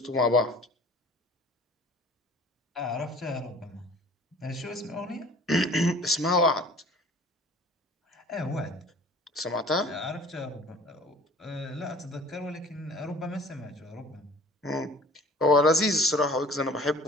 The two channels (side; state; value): both; normal; correlation 0.47